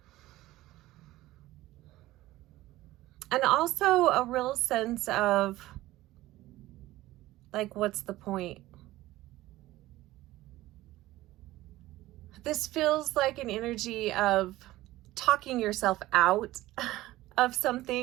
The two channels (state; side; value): quieter; left; 16.8 dB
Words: And also a real sense of like, what's the point? This feels like an energy of talking yourself out of